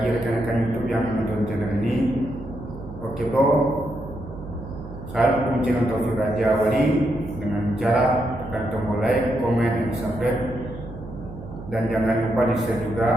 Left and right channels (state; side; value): noise; right; hum, 13 dB below the sound